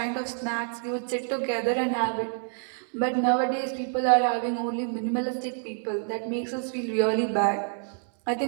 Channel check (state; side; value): silent; left; 60 dB below the other